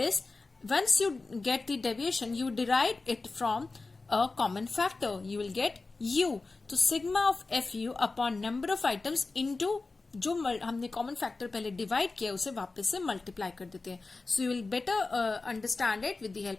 once you get the deviation you derive it from a common factor, you will get U. तो sigma of F U upon number of items into जो हमने common factor पहले divide किया उसे वापस से multiply कर देते हैं. So you will better understand it with the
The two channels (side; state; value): right; quieter; 3.7 dB